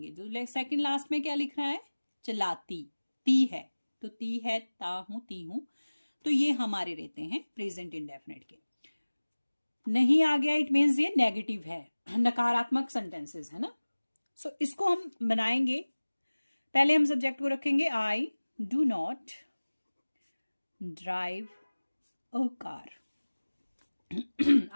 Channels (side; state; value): both; inverted; correlation -1.00